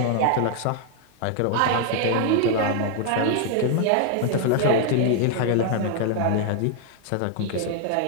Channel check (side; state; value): both; different; correlation 0.00